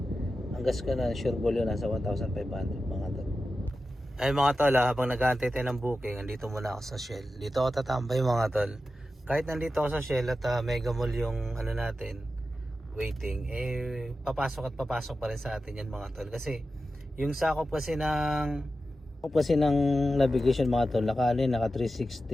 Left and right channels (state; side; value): normal; both; correlation 0.92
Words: ang gas ko na sure ball yun nasa 1,500 mga tol. Ay mga tol, habang nag-aantay tayo ng booking, andito muna ako sa Shell. Dito ako tatambay mga tol. Kahit nandito ako sa Shell at Mega Mall yung natin, waiting, papasok pa rin sa atin yan mga tol. Kasi yung sakop kasi ng navigation mga tol, naka